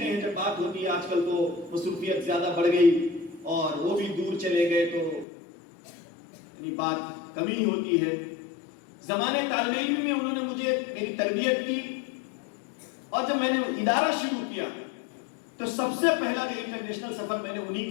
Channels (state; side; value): drops out; right; at 5.2 s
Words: ہیں جب بات ہوتی ہے، آج کل تو مصروفیت زیادہ بڑھ گئی اور وہ بھی دور چلے گئے تو یعنی بات کمی ہوتی ہے۔ زمانے طالب علم میں انہوں نے مجھے میری تربیت کی، اور جب میں نے ادارہ شروع کیا تو سب سے پہلا جو انٹرنیشنل سفر میں نے انہی